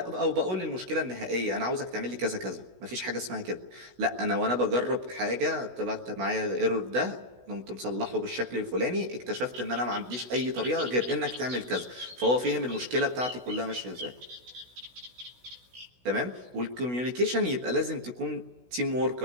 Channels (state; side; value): late; left; 16 ms